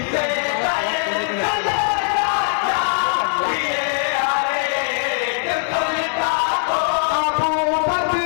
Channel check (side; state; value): right; silent; digital silence